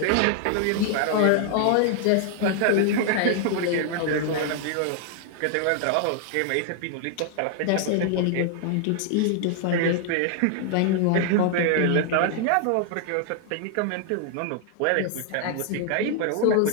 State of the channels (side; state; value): both; different; correlation 0.00